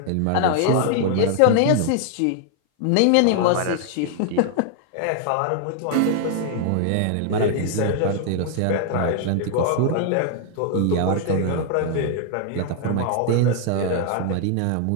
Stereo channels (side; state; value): both; different; correlation 0.00